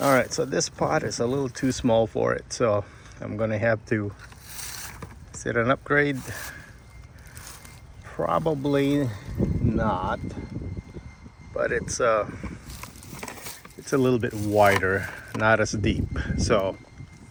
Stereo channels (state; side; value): identical; both; correlation 1.00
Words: right, so this pot is a little too small for it, so I'm gonna have to set an upgrade. Probably not, but it's a little bit wider, not as deep, so